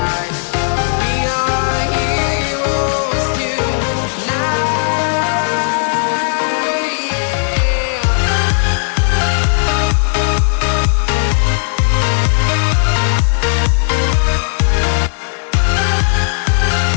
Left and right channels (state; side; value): silent; right; 57 dB below the other